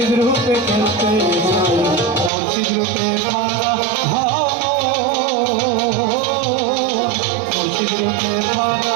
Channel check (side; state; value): left; drops out; at 2.3 s